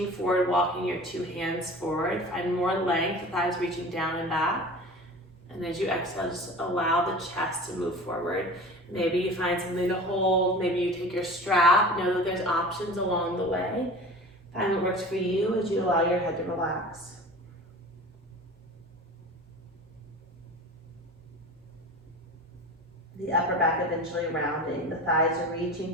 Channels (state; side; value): normal; both; correlation 0.37